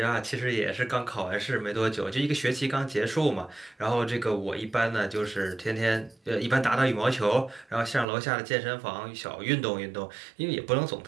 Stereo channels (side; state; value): left; drops out; at 8.1 s